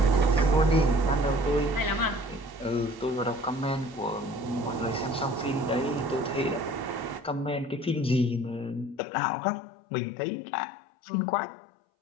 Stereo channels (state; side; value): drops out; right; at 9.0 s